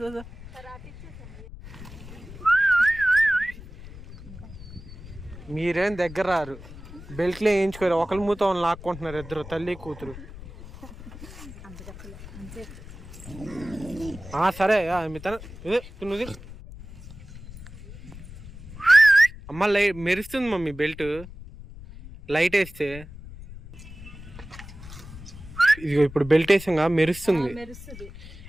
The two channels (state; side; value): noise; left; rumble, 15 dB below the sound